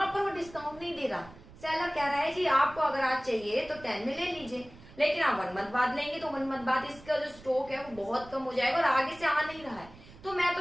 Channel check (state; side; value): noise; right; rumble, 20 dB below the sound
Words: पर वो डिस्काउंट नहीं दे रहा, सेलर कह रहा है जी आपको अगर आज चाहिए तो 10 में ले लीजिए, लेकिन आप 1 मंथ बाद लेंगे तो 1 मंथ बाद इसका जो स्टॉक है वो बहुत कम हो जाएगा और आगे से आ नहीं रहा है, तो मैं तो